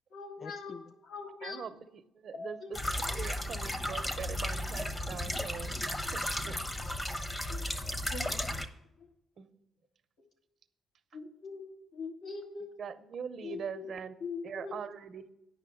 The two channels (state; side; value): normal; both; correlation 0.84